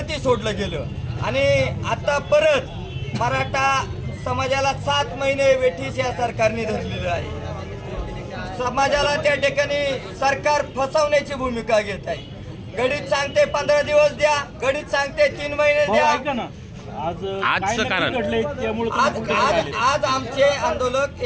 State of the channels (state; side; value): identical; both; correlation 1.00